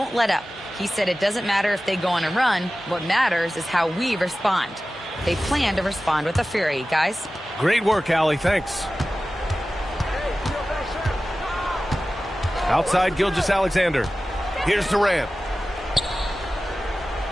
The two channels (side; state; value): both; normal; correlation 0.95